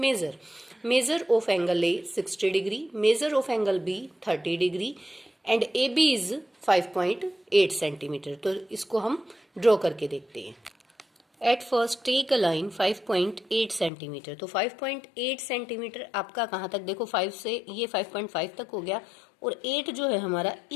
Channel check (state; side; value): drops out; right; at 13.9 s